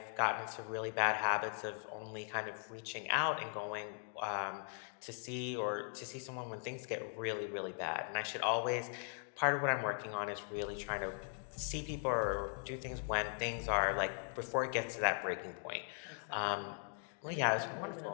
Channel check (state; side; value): silent; right; 51 dB below the other